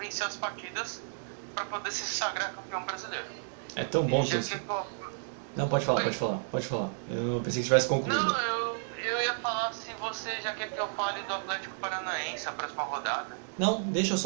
as partidas para poder se sagrar campeão brasileiro. É tão bom que Não, pode falar. Eu pensei que tivesse concluído. Não, eu ia falar se você já quer que eu fale do Atlético Paranaense a próxima rodada. Não, deixa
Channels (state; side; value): silent; left; digital silence